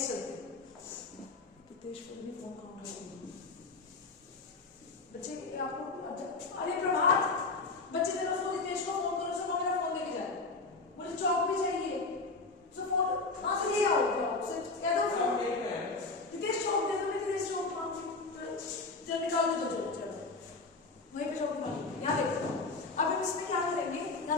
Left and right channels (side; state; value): right; quieter; 3.8 dB